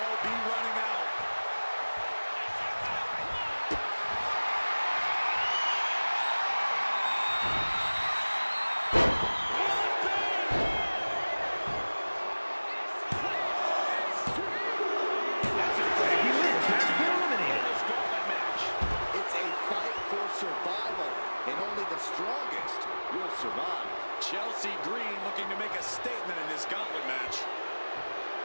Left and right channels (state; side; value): inverted; both; correlation -1.00